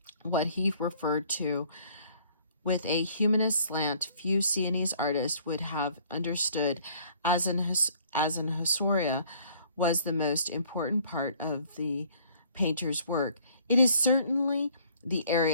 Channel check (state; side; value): inverted; both; correlation -0.58